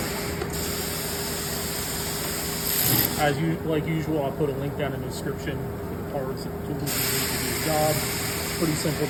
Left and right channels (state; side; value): identical; both; correlation 1.00